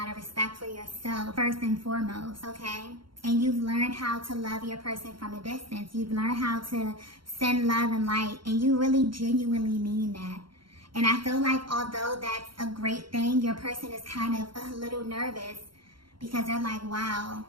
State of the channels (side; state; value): left; late; 0.73 ms